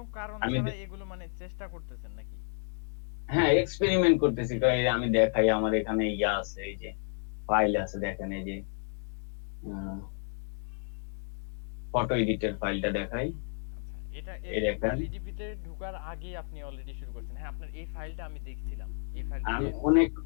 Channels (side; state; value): right; silent; 57 dB below the other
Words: কারণ আমি ছাড়া এগুলো মানে চেষ্টা করতেছেন নাকি? হ্যাঁ এক্সপেরিমেন্ট করতেছি, তো এই আমি দেখাই, আমার এখানে ইয়া আছে, এই যে ফাইল আছে, দেখেন এই যে ফটো এডিটের ফাইলটা দেখাই, আচ্ছা, এটা এই দেখেন। এলইডিপি তে ঢোকার আগে আপনি অলরেডি শুরু করছেন। হ্যাঁ, আপনার এই ফাইলটা আমি দেখছিলাম। এই ফাইলটা আমি যে অনেক